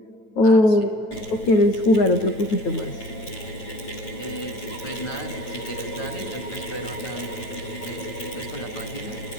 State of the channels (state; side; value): late; right; 9.2 ms